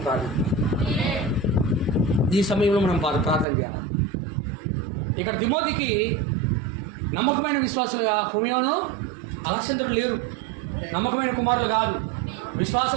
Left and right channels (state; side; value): drops out; left; at 3.5 s